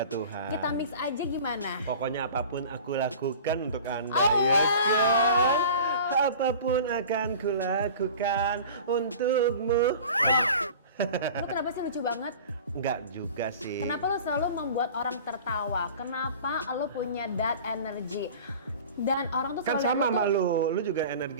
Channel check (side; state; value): both; inverted; correlation -0.40